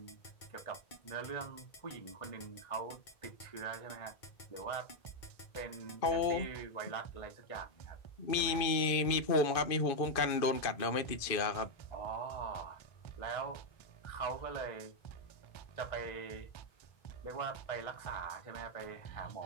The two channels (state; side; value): late; right; 2.5 ms